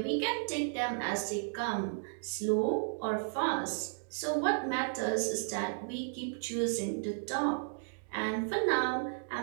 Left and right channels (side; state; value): left; silent; digital silence